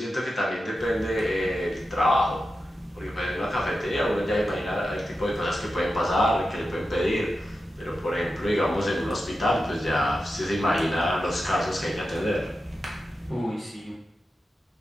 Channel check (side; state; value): both; normal; correlation 0.91